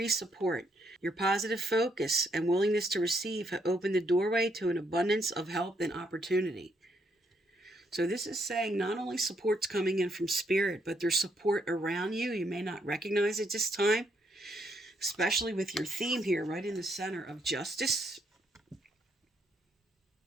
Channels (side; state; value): both; normal; correlation 0.74